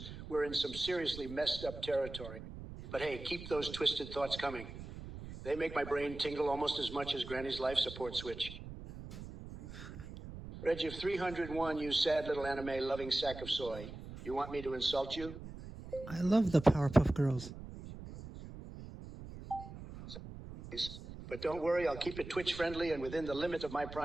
we're in some seriously messed up territory. But hey, keep those twisted thoughts coming. They make my brain tingle almost as much as Granny's life support switch. Reggie of 301, you sad little anime-loving sack of soy. You want me to insult you? I love the Powerpuff Girls. But don't worry, I'll keep it Twitch-friendly and within the limit of my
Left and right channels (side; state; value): right; noise; rumble, 12 dB below the sound